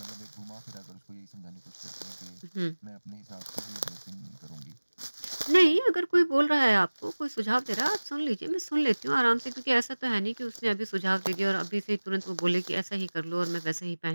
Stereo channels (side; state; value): both; inverted; correlation -1.00